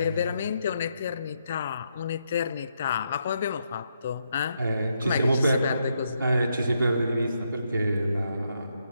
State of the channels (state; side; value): inverted; both; correlation -0.79